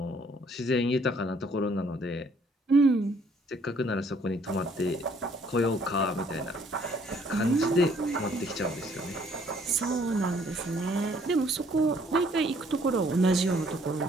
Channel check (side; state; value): both; normal; correlation 0.63